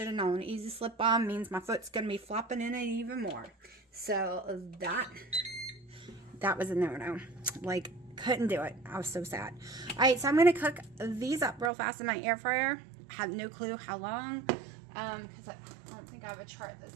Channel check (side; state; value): left; drops out; at 11.7 s